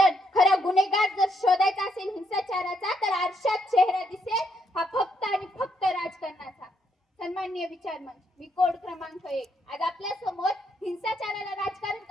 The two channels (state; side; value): normal; both; correlation 0.75